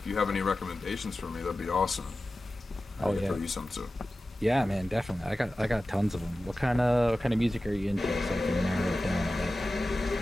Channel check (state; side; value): normal; both; correlation 0.95